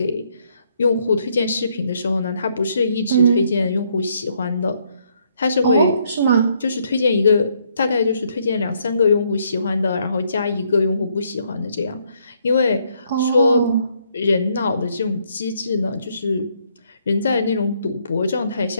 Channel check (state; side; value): inverted; both; correlation -0.71